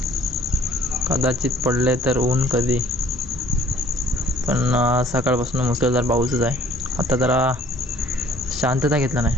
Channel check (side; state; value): both; normal; correlation 0.55